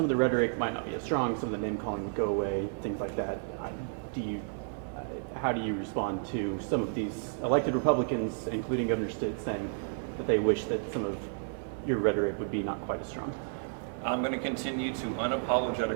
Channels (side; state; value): left; silent; digital silence